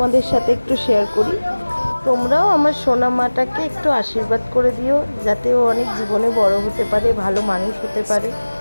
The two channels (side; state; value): both; inverted; correlation -1.00